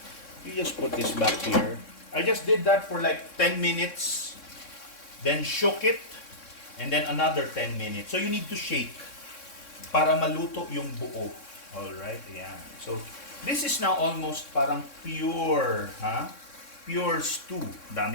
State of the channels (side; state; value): right; late; 3.6 ms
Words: You just put this back here. I just did that for like 10 minutes. Then shook it. And then another 10 minutes. So you need to shake para maluto yung buo. Alright? Yan. So this is now almost parang pure. pure stew.